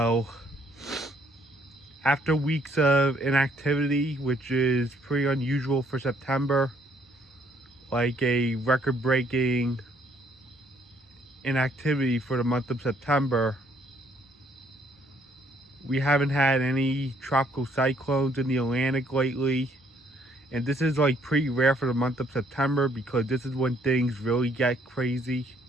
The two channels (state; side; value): normal; both; correlation 0.66